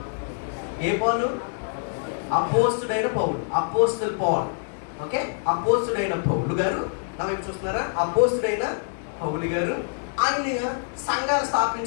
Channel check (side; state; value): right; silent; digital silence